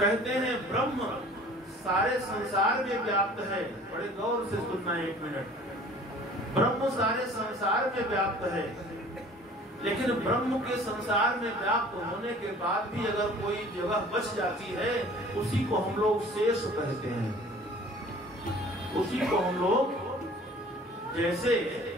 हैं ब्रह्म सारे संसार में व्याप्त है। बड़े गौर से सुनना एक मिनट। ब्रह्म सारे संसार में व्याप्त है, लेकिन ब्रह्म के संसार में व्याप्त होने के बाद भी अगर कोई जगह बच जाती है, उसी को हम लोग शेष कहते हैं। उसी को हम लोग, जैसे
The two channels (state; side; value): normal; both; correlation 0.48